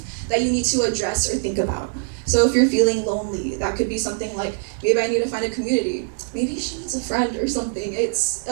that you need to address or think about. So if you're feeling lonely, that could be something like, maybe I need to find a community. Maybe she needs a friend or something. It's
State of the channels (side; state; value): left; silent; 64 dB below the other